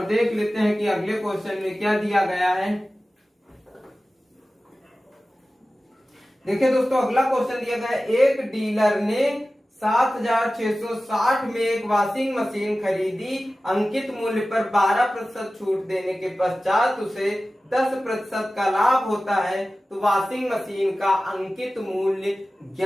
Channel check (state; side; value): normal; both; correlation 0.96